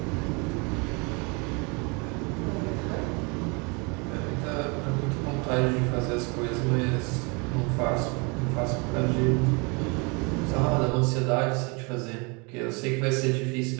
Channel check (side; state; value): left; quieter; 30.7 dB